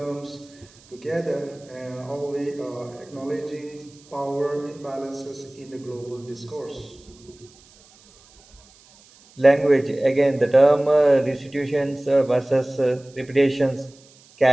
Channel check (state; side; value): noise; right; hiss, 27 dB below the sound